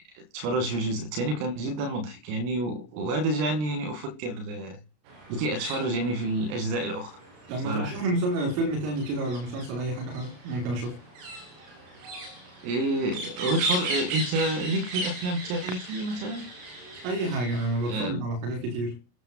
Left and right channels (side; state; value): left; late; 33 ms